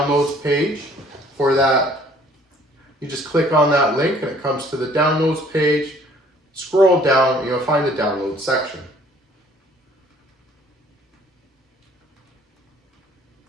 page for that. You just click on that link and it comes to the downloads page. Scroll down and you'll find the download section.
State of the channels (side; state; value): both; normal; correlation 0.57